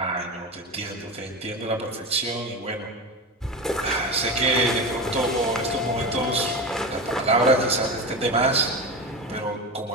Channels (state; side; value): normal; both; correlation 0.22